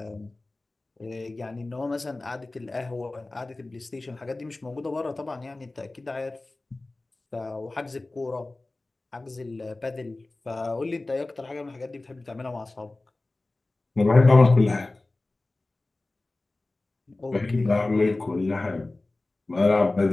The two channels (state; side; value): quieter; right; 3.0 dB